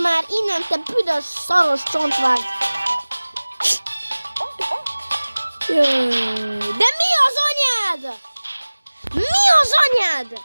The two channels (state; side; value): inverted; both; correlation -1.00